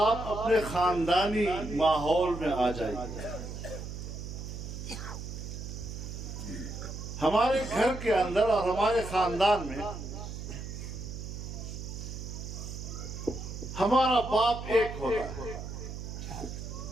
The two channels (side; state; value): right; noise; hum, 8 dB below the sound